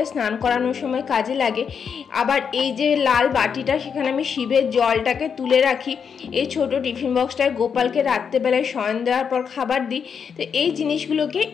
স্নান করানোর সময় কাজে লাগে। আবার এই যে লাল বাটিটা, সেখানে আমি শিবের জলটাকে তুলে রাখি। এই ছোট টিফিন বক্সটায় গোপালকে রাত্রেবেলায় শয়ন দেওয়ার পর খাবার দিই। তো এই জিনিসগুলোকে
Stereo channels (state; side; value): quieter; right; 6.7 dB